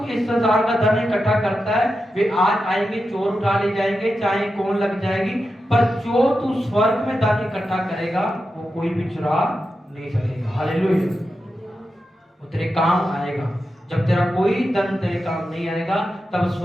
इस संसार का धन इकट्ठा करता है, वे आज आएंगे, चोर उठा ले जाएंगे, चाहे कौन लग जाएगी, पर जो तू स्वर्ग में धन इकट्ठा करेगा वो कोई भी चुरा नहीं सकेगा। हालेलुया। वो तेरे काम आएगा। जब तेरा कोई धन तेरे काम नहीं आएगा, तब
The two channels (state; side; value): normal; both; correlation 0.89